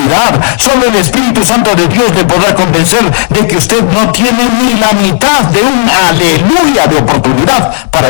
Solo el Espíritu Santo de Dios le podrá convencer de que usted no tiene ni la mitad de un aleluya de oportunidad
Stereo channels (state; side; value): silent; right; digital silence